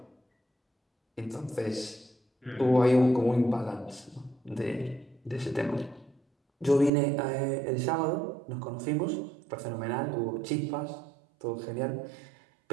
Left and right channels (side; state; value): left; drops out; at 6.9 s